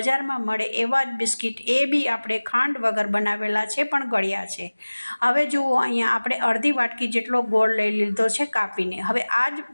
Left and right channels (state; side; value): inverted; both; correlation -1.00